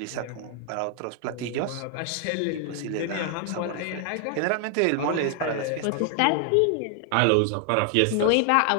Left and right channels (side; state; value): both; different; correlation 0.00